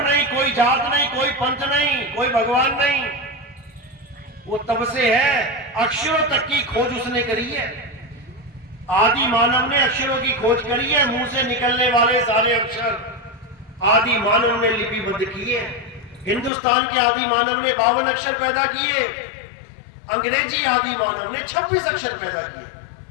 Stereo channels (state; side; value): drops out; right; at 16.5 s